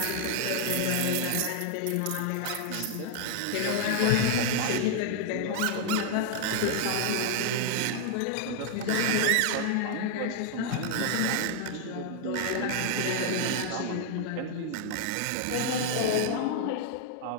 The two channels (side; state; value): both; different; correlation 0.00